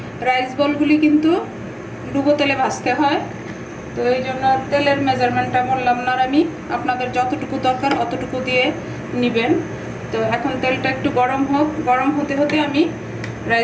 রাইস বলগুলি কিন্তু ডুবো তেলে ভাজতে হয়, তো এই জন্য তেলের মেজারমেন্টটা বললাম না আমি, আপনাদের যতটুকু দরকার অতটুকু দিয়ে নেবেন। তো এখন তেলটা একটু গরম হোক, গরম হতে হতে আমি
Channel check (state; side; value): identical; both; correlation 1.00